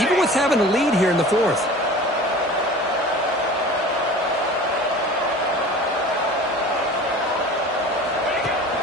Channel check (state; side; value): normal; both; correlation 0.40